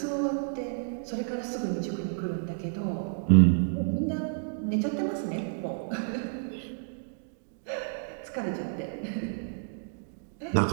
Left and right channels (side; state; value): left; silent; digital silence